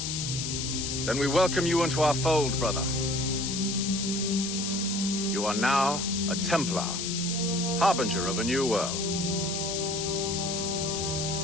Then we welcome you into our fold, brother. You are now a Templar, harbinger of a new world.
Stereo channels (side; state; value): left; noise; hiss, 3 dB below the sound